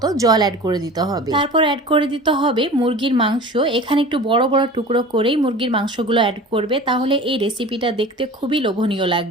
জল অ্যাড করে দিতে হবে। তারপর অ্যাড করে দিতে হবে মুরগির মাংস। এখানে একটু বড় বড় টুকরো করেই মুরগির মাংসগুলো অ্যাড করবে, তাহলে এই রেসিপিটা দেখতে খুবই লোভনীয়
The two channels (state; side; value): normal; both; correlation 0.38